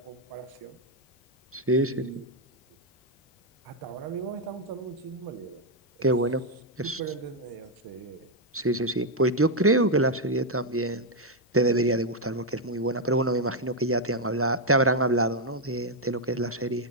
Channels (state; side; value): normal; both; correlation 0.00